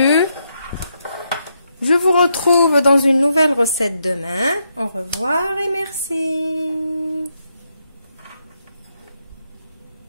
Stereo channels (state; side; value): inverted; both; correlation -0.80